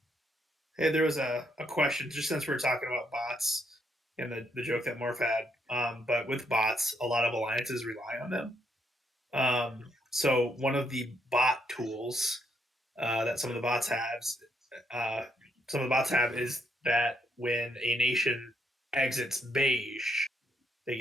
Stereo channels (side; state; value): both; normal; correlation 0.75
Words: Hey, there was a question just since we're talking about bots and the joke that Morph had. But with bots, a lot of alliances rely on them. So one of the bot tools that uh, some of the bots have is that when a nation exits Beige, they